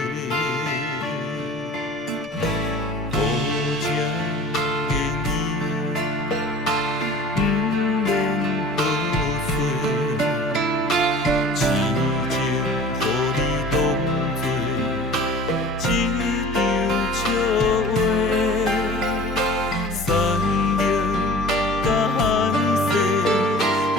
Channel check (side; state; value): both; normal; correlation 0.43